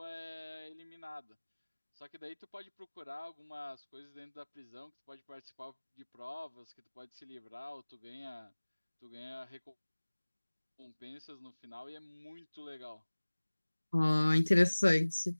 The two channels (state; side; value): inverted; both; correlation -1.00